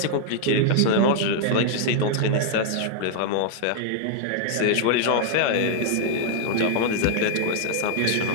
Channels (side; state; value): both; different; correlation -0.01